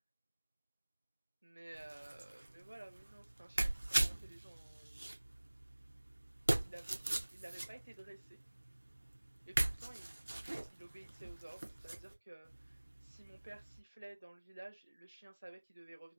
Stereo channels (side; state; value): both; inverted; correlation -1.00